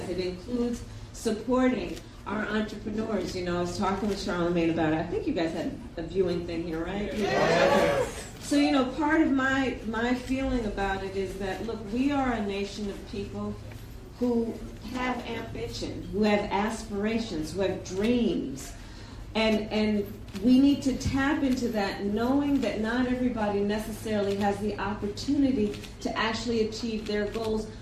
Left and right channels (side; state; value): both; identical; correlation 1.00